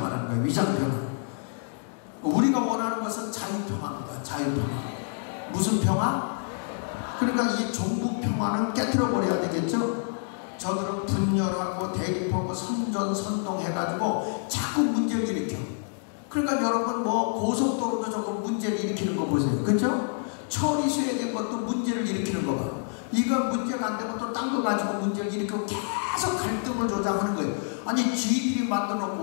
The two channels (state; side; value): silent; right; 60 dB below the other